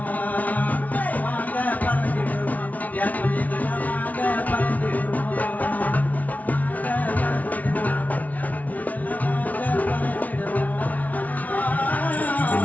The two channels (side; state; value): right; late; 0.073 ms